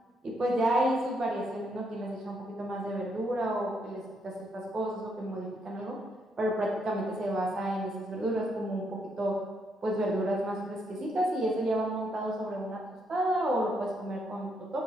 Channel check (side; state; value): both; normal; correlation 0.76